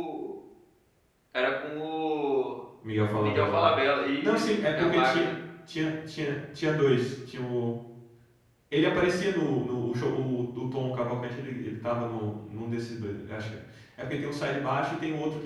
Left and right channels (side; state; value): both; identical; correlation 1.00